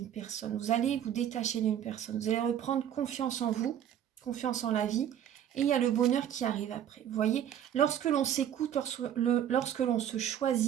personne. Vous allez vous détacher d'une personne. Vous allez reprendre confiance en vous, confiance en la vie. Et il y a le bonheur qui arrive après. Vous voyez, lorsque l'on s'écoute, lorsque l'on se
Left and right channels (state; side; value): quieter; left; 10.0 dB